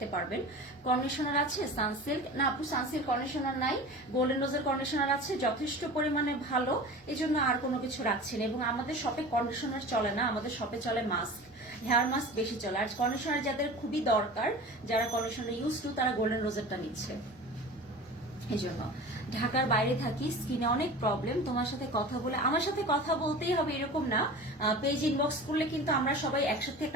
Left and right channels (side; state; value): both; normal; correlation 0.36